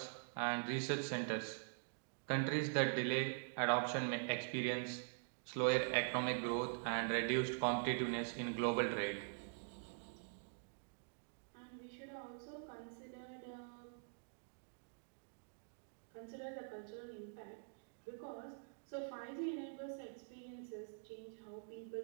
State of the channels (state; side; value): silent; left; digital silence